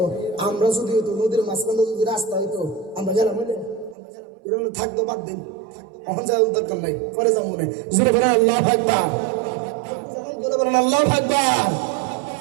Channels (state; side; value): drops out; left; at 4.0 s